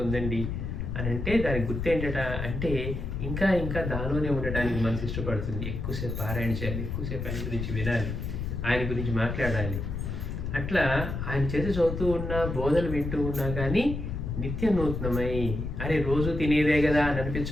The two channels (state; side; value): noise; left; rumble, 4 dB below the sound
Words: అని అంటే దానికి గుర్తు ఏంటట అంటే ఇంకా ఇంకా దానిలోనే ఉండడానికి మనసు ఇష్టపడుతుంది. ఎక్కువసేపు పారాయణ చేయాలి, ఎక్కువసేపు ఆయన గురించి వినాలి, ఆయన గురించి మాట్లాడాలి. అట్లా ఆయన చేసి చదువుతూ ఉన్నా, బోధలు వింటూ ఉన్నా కానీ నిత్య నూతనమై, అరే రోజు తినేదే కదా అని